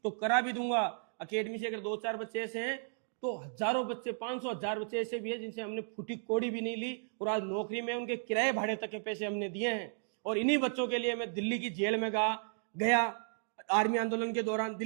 तो करा भी दूंगा। अकेडमी से अगर 2-4 बच्चे ऐसे हैं तो हजारों बच्चे, 500-1000 बच्चे ऐसे भी हैं जिनसे हमने फूटी कोड़ी भी नहीं ली, और आज नौकरी में उनके किराए भाड़े तक के पैसे हमने दिए हैं। और इन्हीं बच्चों के लिए मैं दिल्ली की जेल में गया। आर्मी आंदोलन के दौरान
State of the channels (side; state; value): left; silent; digital silence